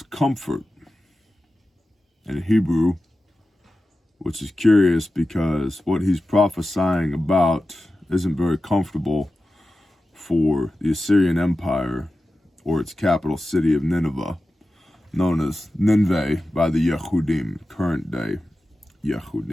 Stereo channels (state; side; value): normal; both; correlation 0.93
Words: comfort in Hebrew, which is curious because what he's prophesying about isn't very comfortable for the Assyrian Empire or its capital city of Nineveh, known as Nineveh by the Yehudim, current day